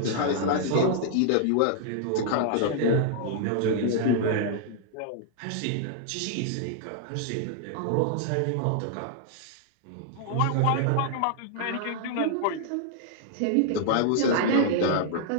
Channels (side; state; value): both; different; correlation -0.01